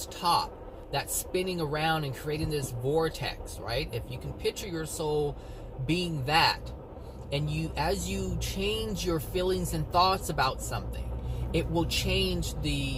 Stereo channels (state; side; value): identical; both; correlation 1.00